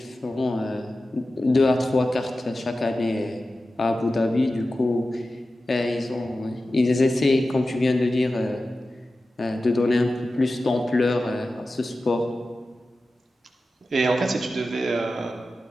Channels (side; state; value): both; normal; correlation 0.94